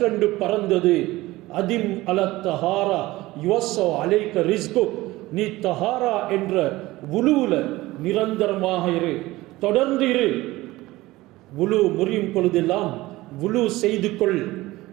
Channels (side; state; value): left; quieter; 18.7 dB